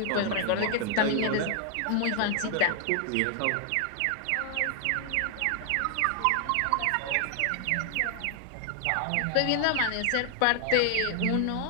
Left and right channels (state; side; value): different; both; correlation 0.00